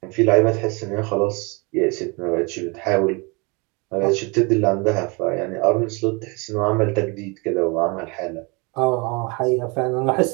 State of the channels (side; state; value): left; quieter; 29.3 dB